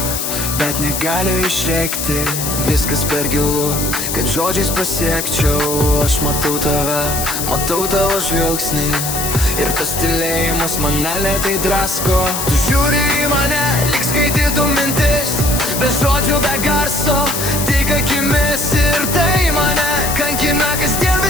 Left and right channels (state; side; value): noise; left; hiss, 3 dB below the sound